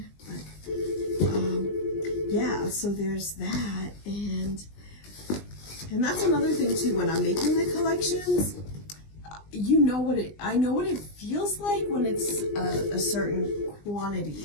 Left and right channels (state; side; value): late; right; 20 ms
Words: but yeah, so there's that. And that's another thing too, when I'm making the collections, I know what it feels like when it's a certain